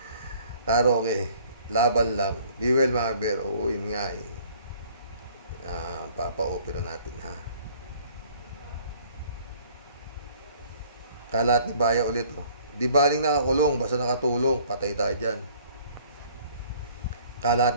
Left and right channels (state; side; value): inverted; both; correlation -0.56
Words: Karoke. Laban lang. Be well mga bear. Oo, yun nga papa-opera natin Kalat ni Bayaw ulit Di baling nakakulong, basta nakatulong. Patay tayo dyan. Kalat